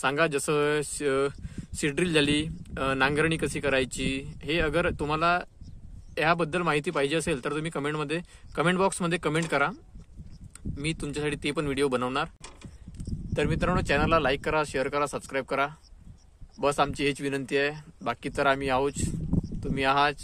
सांगा, जसं सीड्रिल झाली, नांगरणी कशी करायची, हे अगर तुम्हाला याबद्दल माहिती पाहिजे असेल तर तुम्ही कमेंट बॉक्समध्ये कमेंट करा. मी तुमच्यासाठी ते पण व्हिडिओ बनवणार. तर मित्रांनो, चॅनलला लाईक करा, शेअर करा, सबस्क्राईब करा. बस आमची हीच विनंती आहे. बाकी तर आम्ही आहोत, तुम्ही आहात.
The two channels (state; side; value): identical; both; correlation 1.00